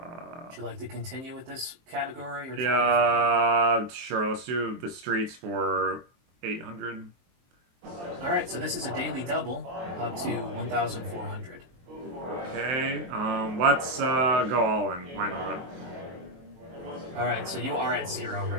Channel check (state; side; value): late; left; 23 ms